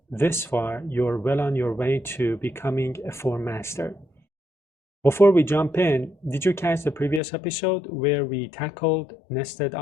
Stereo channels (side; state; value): right; drops out; at 7.2 s